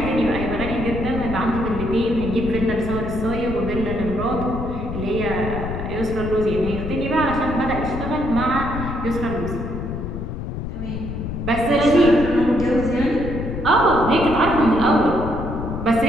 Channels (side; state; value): left; noise; rumble, 6 dB below the sound